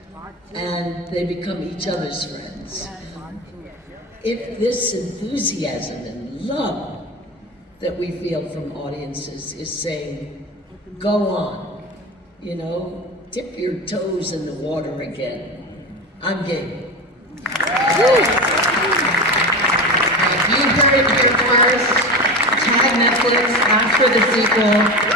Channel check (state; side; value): normal; both; correlation 0.25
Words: and they become each other's friends. If this enthusiasm and love that we feel from audiences is saying, go on, dip your toes in the water again. I'm game. You heard it here first. Tag Netflix, ask for the sequel.